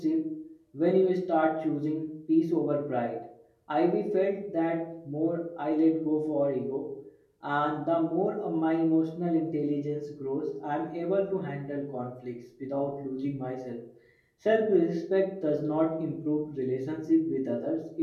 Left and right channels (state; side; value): identical; both; correlation 1.00